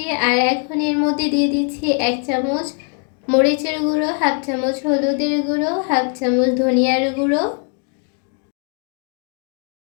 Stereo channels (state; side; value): quieter; right; 39.0 dB